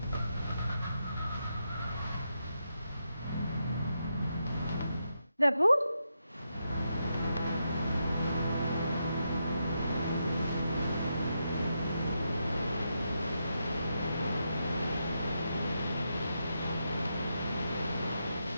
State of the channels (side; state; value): both; inverted; correlation -0.84